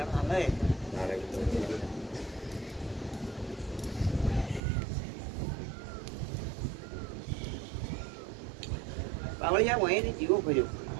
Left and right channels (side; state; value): left; drops out; at 4.6 s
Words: લે પાવળિયા હોય ને જીવો કર્યો